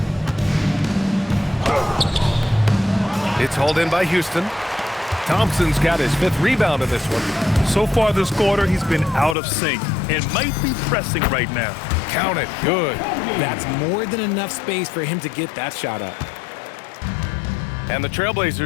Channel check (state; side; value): drops out; right; at 9.3 s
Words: It's hauled in by Houston. Thompson's got his 5th rebound in this one. So far this quarter, he's been out of sync and might be pressing right now. Count it. Good. That's more than enough space for him to get that shot up. And the